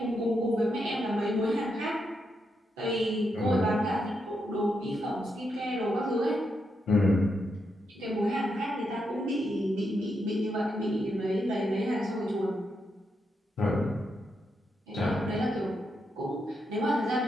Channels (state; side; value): normal; both; correlation 0.82